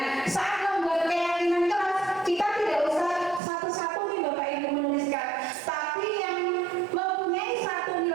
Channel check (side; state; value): left; drops out; at 3.4 s